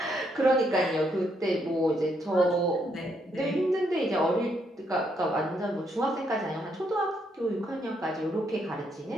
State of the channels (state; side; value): normal; both; correlation 0.75